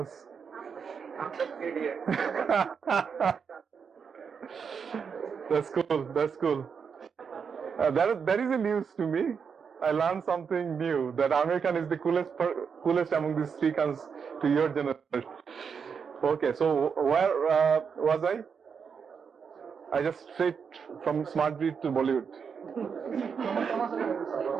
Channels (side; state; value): left; quieter; 6.3 dB